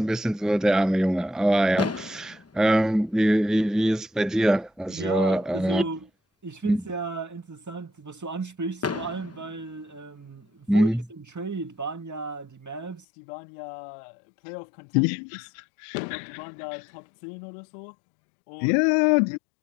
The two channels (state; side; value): drops out; right; at 13.1 s